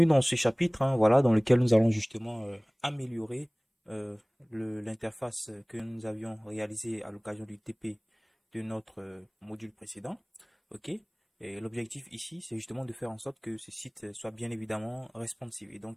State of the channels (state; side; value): identical; both; correlation 1.00